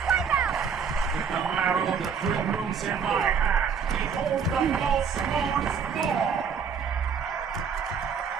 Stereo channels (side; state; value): left; quieter; 6.4 dB